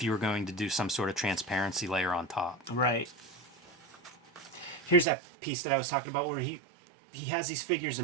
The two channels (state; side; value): drops out; left; at 5.1 s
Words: you were going to do some sort of transparency layer on top. Right. Here's that piece that I was talking about where he has these figures